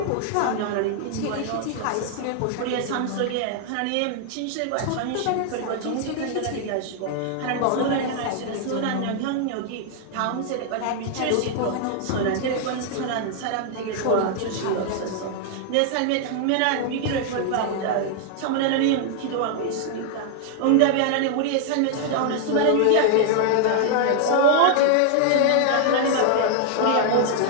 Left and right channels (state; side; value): different; both; correlation -0.01